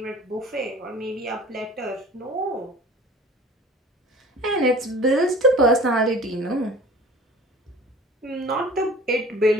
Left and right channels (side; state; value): both; normal; correlation 0.44